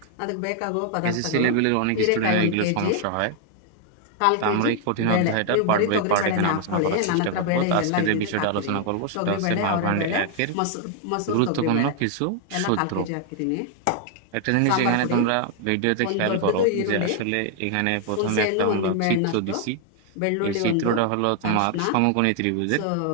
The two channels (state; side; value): different; both; correlation 0.00